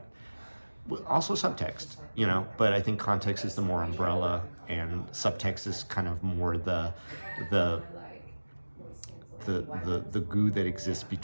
also subtext, but I think context is the more umbrella and subtext is kind of more the goo that exists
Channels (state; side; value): inverted; both; correlation -1.00